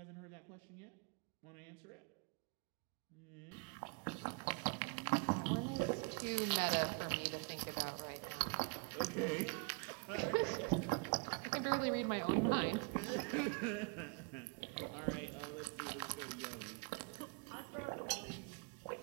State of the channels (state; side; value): quieter; left; 34.7 dB